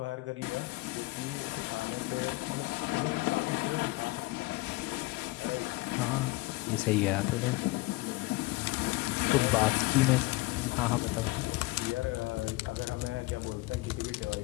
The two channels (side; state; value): right; quieter; 21.8 dB